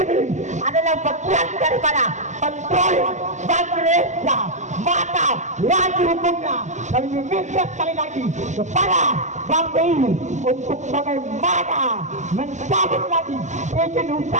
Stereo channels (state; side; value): late; left; 0.34 ms